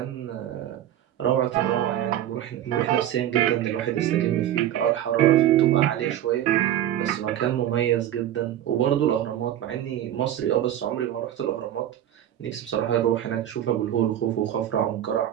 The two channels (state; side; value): quieter; left; 11.7 dB